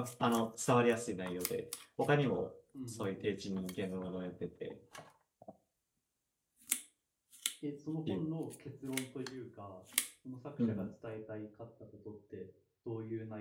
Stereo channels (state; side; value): identical; both; correlation 1.00